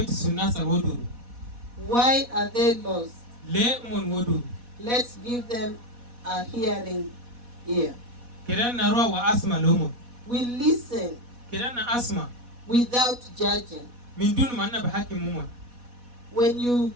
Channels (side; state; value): left; late; 4.1 ms